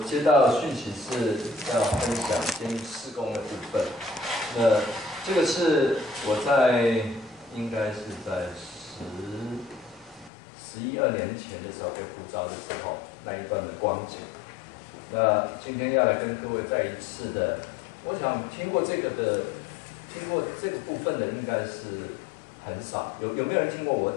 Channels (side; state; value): right; drops out; at 10.3 s